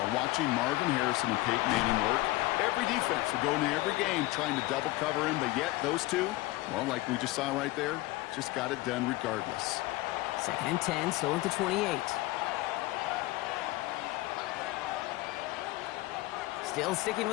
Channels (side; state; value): right; quieter; 19.3 dB